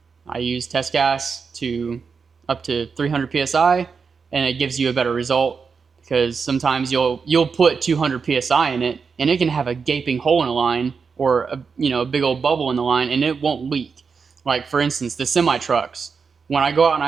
I use test gas to up to 300 PSI, and it gives you a better result because sometimes you'll put 200 psi in it and it can have a gaping hole in the line or a big old bubble in the line and it won't leak. Like for instance, the semi trucks. When I go out and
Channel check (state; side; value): quieter; left; 5.5 dB